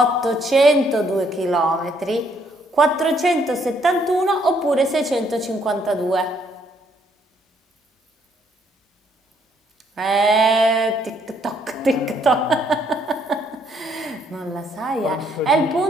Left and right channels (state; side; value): normal; both; correlation 0.68